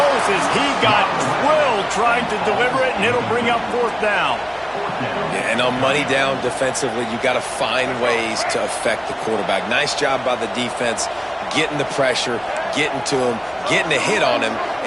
as he got drilled trying to deliver it, and it'll bring up 4th down. Yeah, and on money down defensively, you got to find ways to affect the quarterback. Nice job by the defense, getting the pressure, getting to him, getting a hit on him,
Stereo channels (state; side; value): identical; both; correlation 1.00